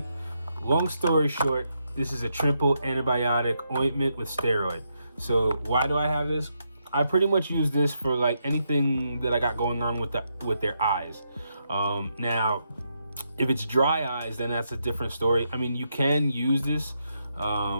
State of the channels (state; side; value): inverted; both; correlation -0.81